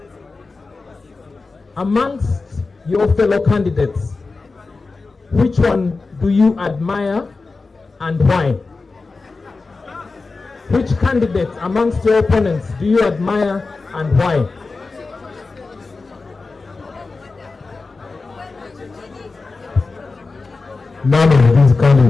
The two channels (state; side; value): quieter; right; 3.9 dB